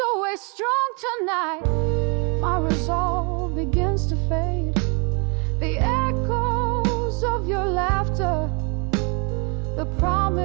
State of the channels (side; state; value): left; quieter; 34.3 dB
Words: strong tonight. My resolve begins to fade. The echoes of your laughter, the